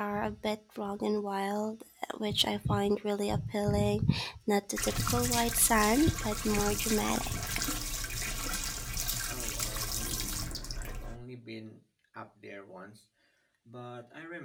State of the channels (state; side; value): identical; both; correlation 1.00